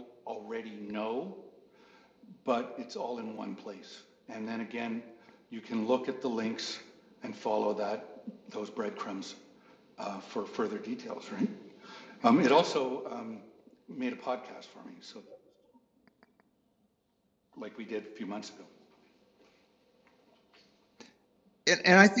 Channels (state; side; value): identical; both; correlation 1.00